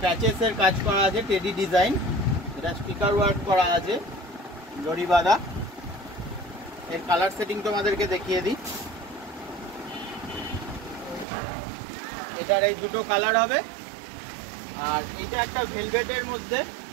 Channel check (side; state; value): left; drops out; at 11.2 s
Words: প্যাচেসের কাজ করা আছে, টেডি ডিজাইন। এটা স্পিকার ওয়ার্ক করা আছে, জরি বাঁধা। এর কালার সেটিং তোমাদেরকে দেখিয়ে দিই। এটার এই দুটো কালার হবে, আর এটা একটা ভেলভেটের মধ্যে,